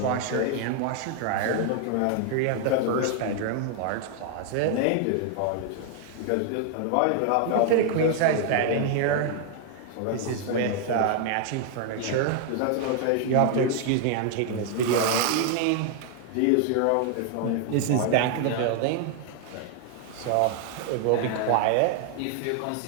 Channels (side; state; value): both; different; correlation 0.00